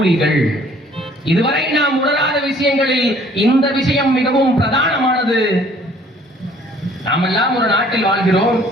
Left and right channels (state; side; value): normal; both; correlation 0.57